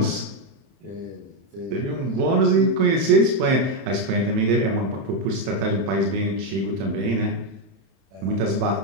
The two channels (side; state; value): left; late; 31 ms